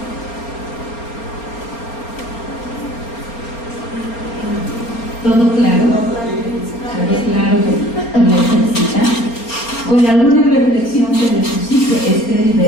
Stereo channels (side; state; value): right; late; 4.3 ms